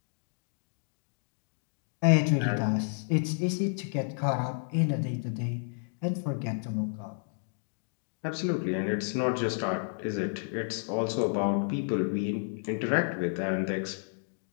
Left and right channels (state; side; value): silent; right; 57 dB below the other